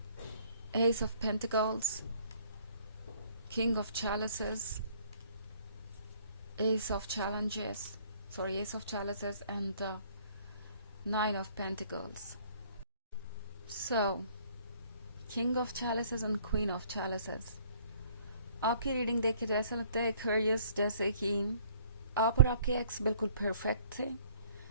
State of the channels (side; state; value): both; inverted; correlation -0.59